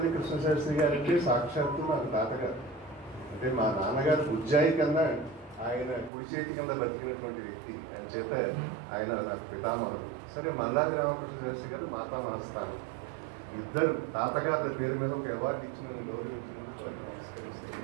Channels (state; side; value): drops out; left; at 6.1 s